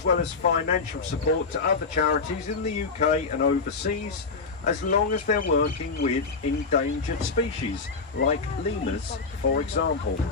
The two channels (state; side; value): quieter; right; 4.5 dB